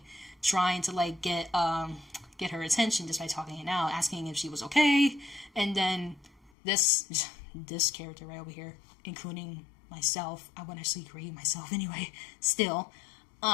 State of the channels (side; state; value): right; drops out; at 6.5 s